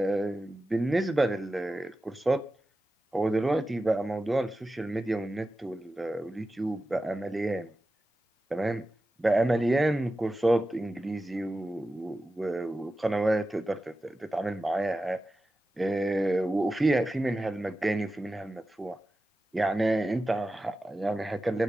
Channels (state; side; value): normal; both; correlation 0.93